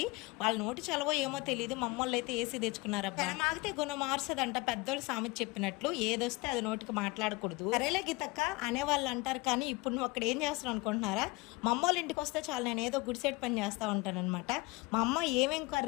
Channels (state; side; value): quieter; right; 24.9 dB